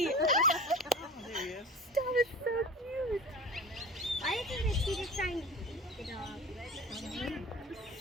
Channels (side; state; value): both; normal; correlation 0.36